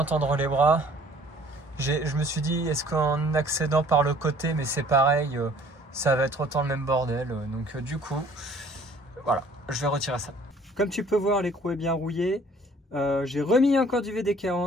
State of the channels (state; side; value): normal; both; correlation 0.54